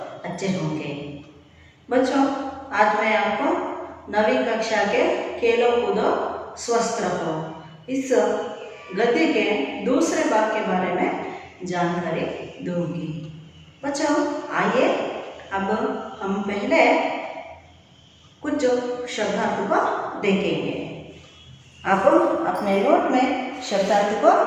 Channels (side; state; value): both; identical; correlation 1.00